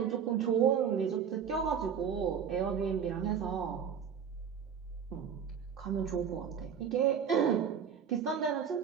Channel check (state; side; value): quieter; left; 7.6 dB